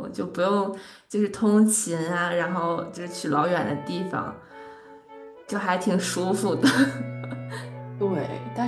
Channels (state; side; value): identical; both; correlation 1.00